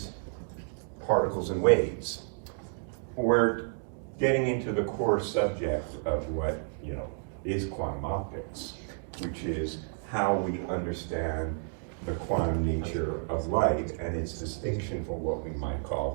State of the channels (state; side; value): silent; left; 56 dB below the other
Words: particles and waves. We're getting into the core subject of what, you know, is quantum optics, which is how we understand the quantum nature of light and its distinction from what we might